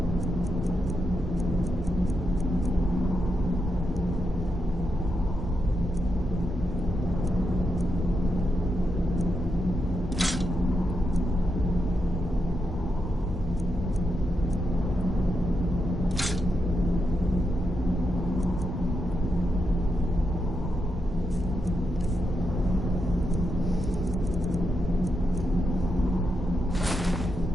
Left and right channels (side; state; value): both; normal; correlation 0.84